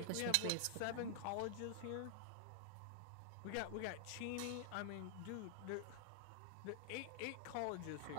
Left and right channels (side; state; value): both; different; correlation 0.00